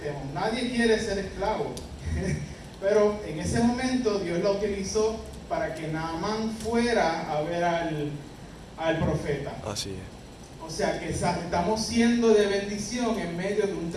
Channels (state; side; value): identical; both; correlation 1.00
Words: Nadie quiere ser esclavo. Pero en ese momento Dios la utilizó para que Naamán fuera a ver al profeta. Así es. O sea que estamos siendo de bendición en medio de un